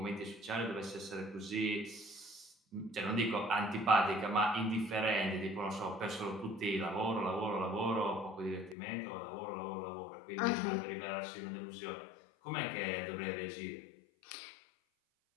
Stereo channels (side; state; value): right; drops out; at 8.8 s